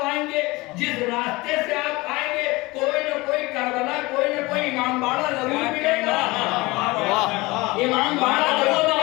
آئیں گے, جس راستے سے آپ آئیں گے, کوئی نہ کوئی کربلا, کوئی نہ کوئی امام باڑہ ضرور ملے گا. امام باڑہ ضرور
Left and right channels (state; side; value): quieter; right; 22.2 dB